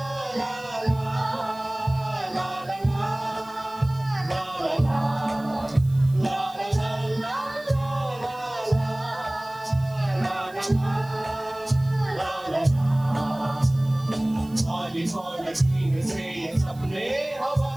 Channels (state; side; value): noise; right; hiss, 24 dB below the sound